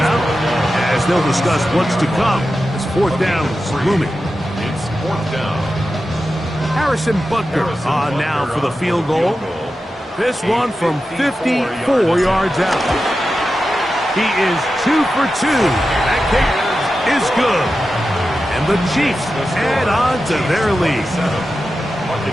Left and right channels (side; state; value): both; normal; correlation 0.91